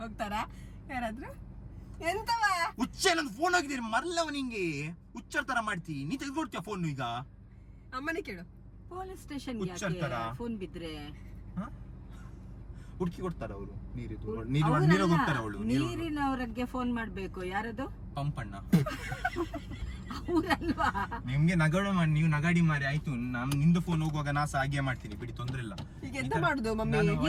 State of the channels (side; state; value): both; identical; correlation 1.00